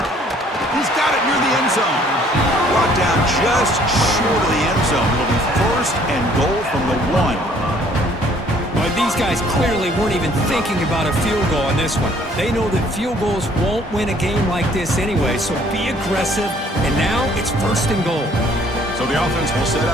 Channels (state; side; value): normal; both; correlation 0.60